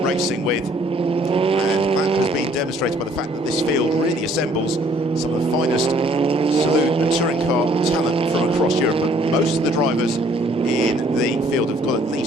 racing with, and that has been demonstrated by the fact that this field really assembles some of the finest saloon and touring car talent from across Europe. And most of the drivers in the field have got at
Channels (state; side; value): normal; both; correlation 0.61